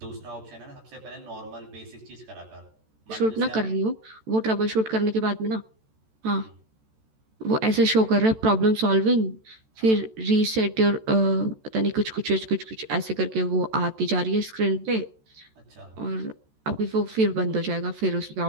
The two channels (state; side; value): late; left; 14 ms